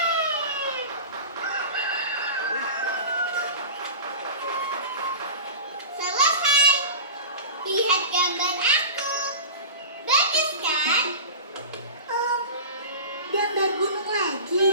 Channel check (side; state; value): both; inverted; correlation -0.33